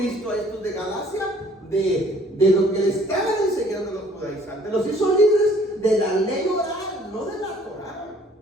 a estos de Galacia? De lo que le estaban enseñando los judaizantes. Los hizo libres de la ley oral, no de la Torá.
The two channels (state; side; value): normal; both; correlation 0.57